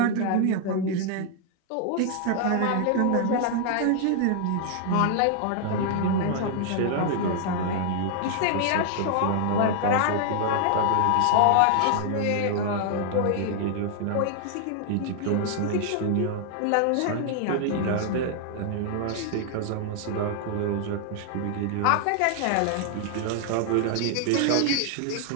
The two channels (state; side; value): different; both; correlation 0.00